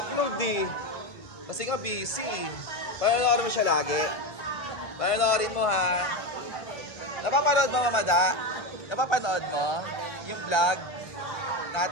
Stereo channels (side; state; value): right; late; 1.5 ms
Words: eh. Kasi nga busy. Panoorin mo siya lagi. Panoorin mo ha. Napapanood mo, Mamada? Napapanood mo? Yung vlog